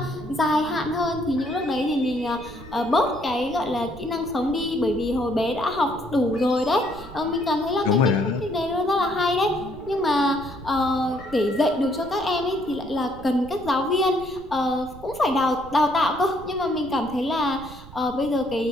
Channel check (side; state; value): right; noise; rumble, 17 dB below the sound